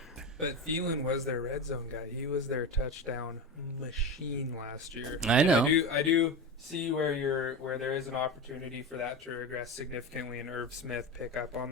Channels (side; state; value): both; normal; correlation 0.22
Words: But Thielen was their red zone guy. He was their touchdown machine last year. I know. I do see where there is an opportunity for that to regress significantly, and Irv Smith pick up on